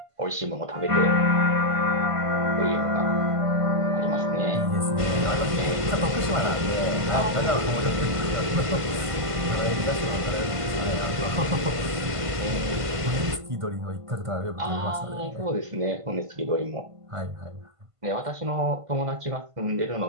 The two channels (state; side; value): late; left; 1.5 ms